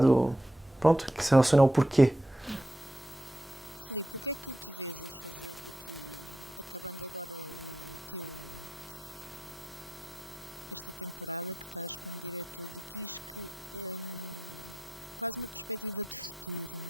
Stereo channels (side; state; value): both; normal; correlation 0.84